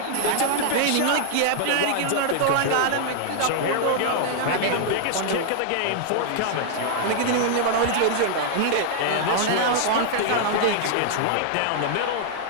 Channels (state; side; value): different; both; correlation -0.01